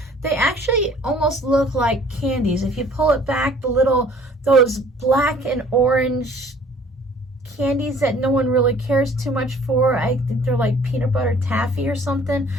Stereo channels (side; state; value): both; normal; correlation 0.53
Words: They actually almost look like candies. If you pull it back, those black and orange candies that no one really cares too much for, I think they're like peanut butter taffy or something,